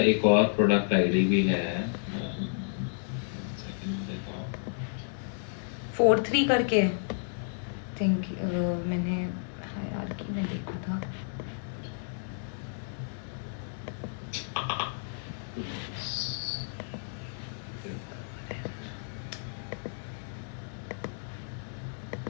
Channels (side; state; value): right; silent; digital silence